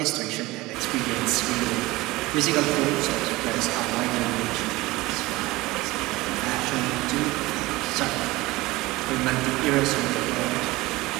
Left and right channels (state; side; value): quieter; left; 20.2 dB